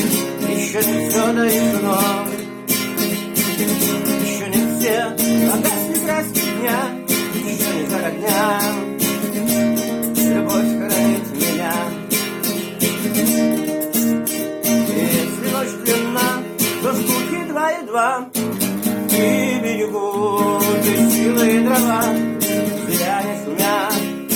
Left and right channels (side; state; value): both; identical; correlation 1.00